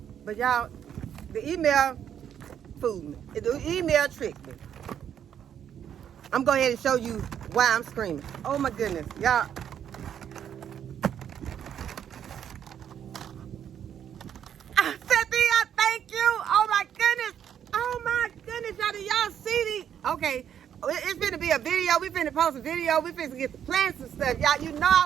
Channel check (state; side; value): quieter; left; 9.2 dB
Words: But y'all, the email fooled me. The email tricked me. I'm going to go ahead and show you why I'm screaming. Oh my goodness, y'all. Cynthia, thank you. Oh my goodness, y'all. Do y'all see these? Okay. It's going to be a video. We're going to post a video. We're going to get to plant some stuff. Y'all, you know I